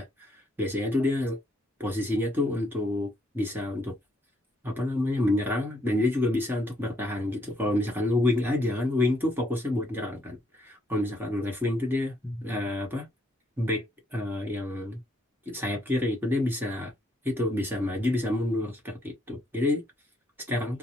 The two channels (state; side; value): normal; both; correlation 0.71